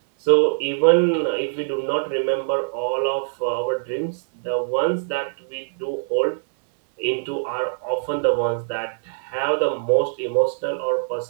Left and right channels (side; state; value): left; silent; 64 dB below the other